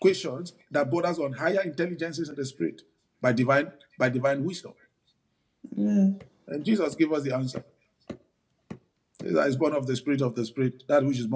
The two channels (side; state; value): both; identical; correlation 1.00